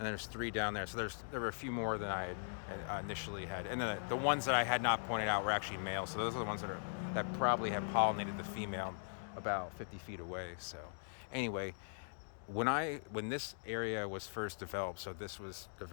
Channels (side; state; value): right; silent; digital silence